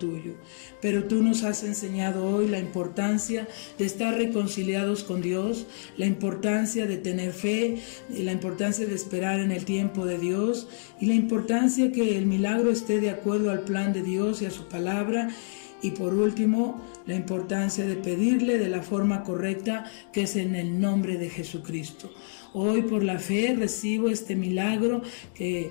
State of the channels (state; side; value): silent; right; digital silence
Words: Pero tú nos has enseñado hoy la importancia de estar reconciliados con Dios, la importancia de tener fe, la importancia de esperar en el tiempo de Dios, y la importancia que el milagro esté de acuerdo al plan de Dios y a su palabra. Y por último, la importancia de pedirle de la forma correcta, que es en el nombre de Jesucristo. Hoy por la fe recibo este milagro que